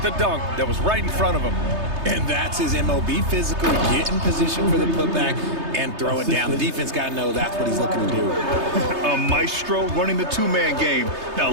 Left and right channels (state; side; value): late; left; 3.3 ms